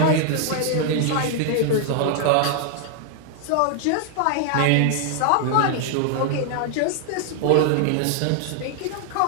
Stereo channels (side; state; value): both; different; correlation 0.00